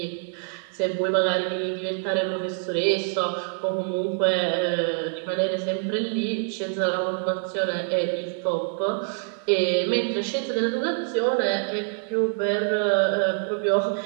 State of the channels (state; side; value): silent; left; 60 dB below the other